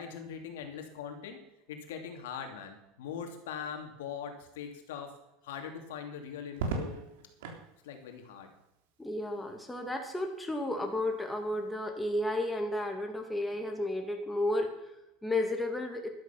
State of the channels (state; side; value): normal; both; correlation 0.63